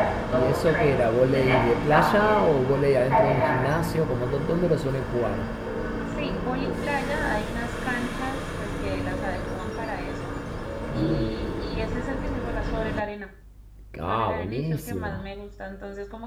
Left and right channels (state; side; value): identical; both; correlation 1.00